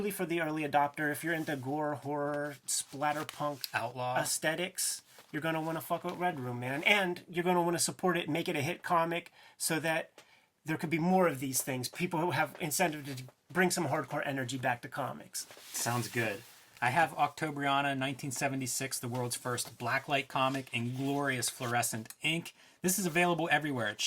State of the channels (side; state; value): both; identical; correlation 1.00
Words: for the early adopter, if you're into gore, horror, splatterpunk, outlaw aesthetics, you're going to want to fuck with Red Room, man. And you're going to want to support it and make it a hit comic so that there could be more of these things. People who have incentive to bring some hardcore energy back to comics. Sounds good. I have Octobriana 1976, the world's first blacklight comic in glorious fluorescent ink. This is available everywhere. It